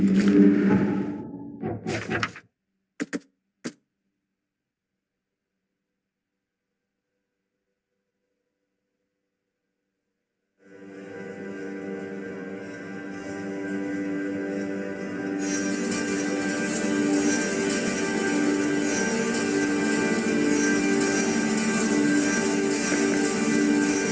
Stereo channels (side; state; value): both; identical; correlation 1.00